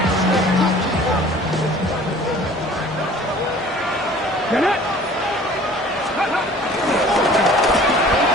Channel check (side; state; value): both; normal; correlation 0.49